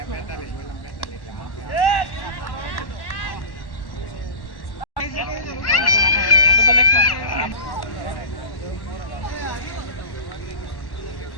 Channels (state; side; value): late; right; 1.1 ms